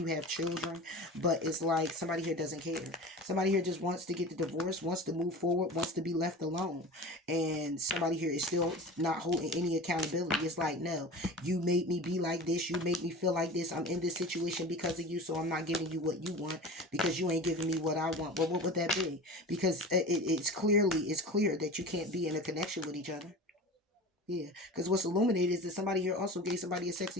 have children. But it's like somebody here doesn't care. Somebody here just wants to get the divorce, wants to move forward, wants to be left alone. And somebody here is still not holding any accountability. It's like, no, you made me be like this, you made me feel like this, I'm in this situation because of you, so I'm not giving you what you want because you ain't giving me what I want. Well, what would that be? Because it's clear that you can't be in a connection with each other. Yeah, because what's illuminated is that somebody here also gave somebody a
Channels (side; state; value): both; normal; correlation 0.34